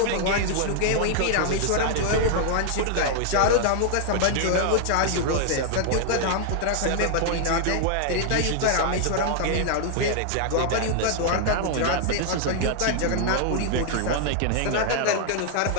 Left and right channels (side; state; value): both; different; correlation 0.00